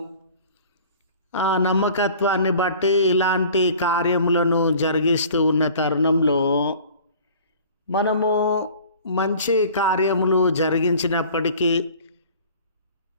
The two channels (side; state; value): both; inverted; correlation -0.47